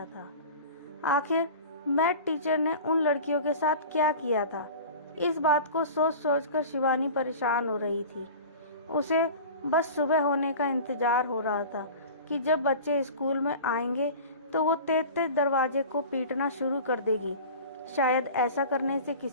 था। आखिर मैथ टीचर ने उन लड़कियों के साथ क्या किया था? इस बात को सोच सोचकर शिवानी परेशान हो रही थी। उसे बस सुबह होने का इंतजार हो रहा था कि जब बच्चे स्कूल में आएंगे तो वो तेज तेज दरवाजे को पीटना शुरू कर देगी। शायद ऐसा करने से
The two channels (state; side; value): inverted; both; correlation -0.37